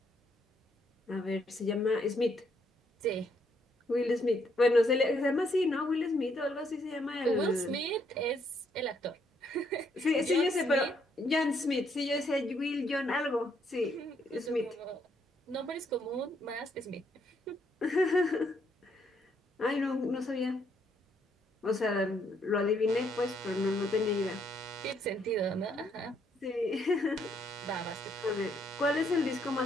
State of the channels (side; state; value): both; normal; correlation 0.72